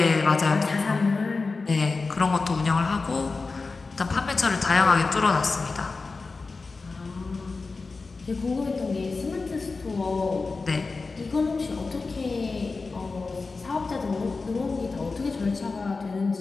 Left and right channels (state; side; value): quieter; right; 4.0 dB